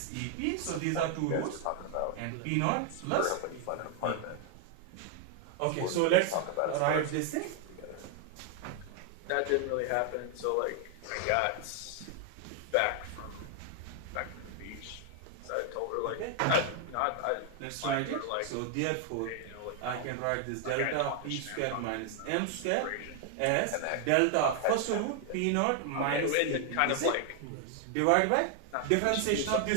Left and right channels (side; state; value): both; different; correlation 0.00